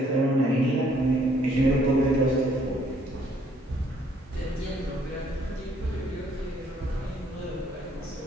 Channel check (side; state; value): both; normal; correlation 0.65